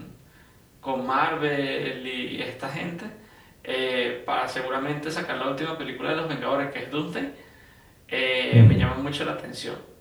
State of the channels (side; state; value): both; identical; correlation 1.00